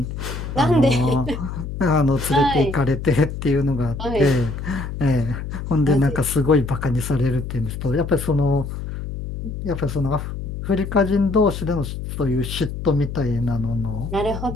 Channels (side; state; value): left; noise; hum, 7 dB below the sound